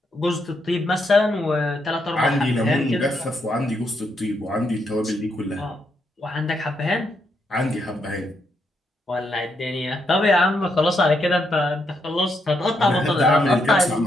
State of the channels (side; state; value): both; normal; correlation 0.78